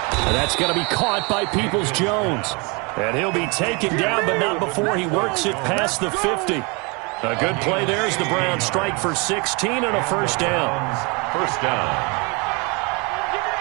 And that's going to be caught by Peoples-Jones. And he'll be taken down, but not before he works it past the 50. A good play there as the Browns strike for 16 and a first down. First down.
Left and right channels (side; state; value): left; quieter; 30.0 dB